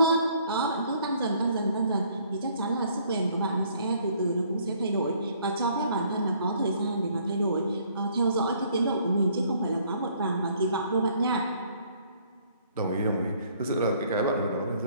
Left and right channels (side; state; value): both; inverted; correlation -0.62